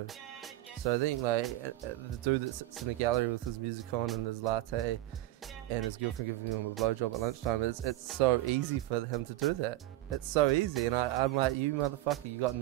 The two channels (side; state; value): left; quieter; 15.9 dB